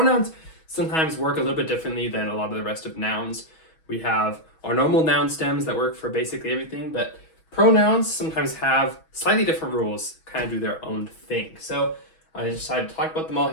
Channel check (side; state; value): right; late; 6.2 ms